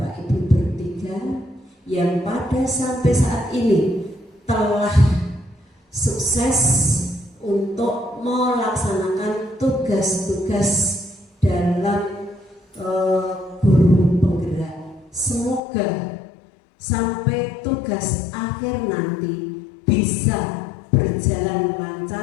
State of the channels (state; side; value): drops out; right; at 15.6 s